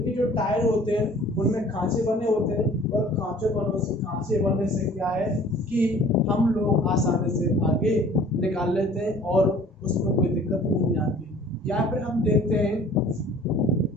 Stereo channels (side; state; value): both; normal; correlation 0.50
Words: जो टायर होते हैं उनमें खांचे बने होते हैं, और खांचे बनने से क्या है कि हम लोग आसानी से आगे निकाल लेते हैं और उसमें कोई दिक्कत नहीं आती। या फिर हम देखते हैं,